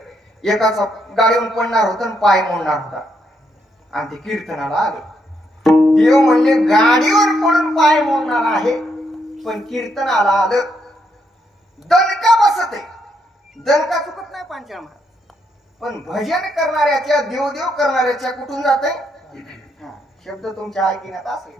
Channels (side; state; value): both; normal; correlation 0.77